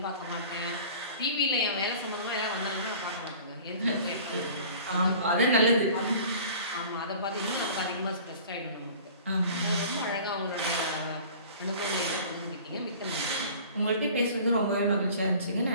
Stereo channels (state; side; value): inverted; both; correlation -0.44